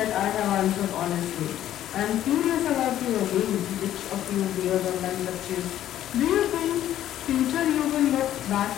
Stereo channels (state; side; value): quieter; right; 12.1 dB